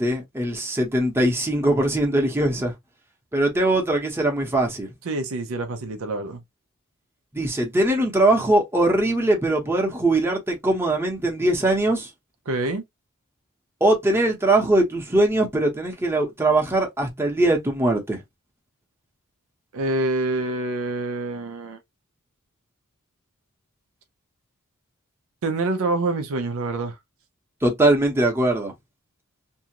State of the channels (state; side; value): normal; both; correlation 0.62